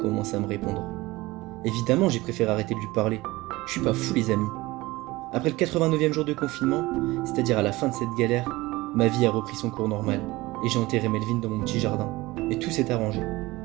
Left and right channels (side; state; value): left; quieter; 20.1 dB